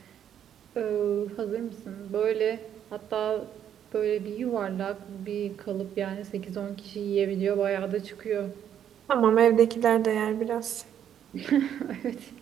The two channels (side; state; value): left; quieter; 9.6 dB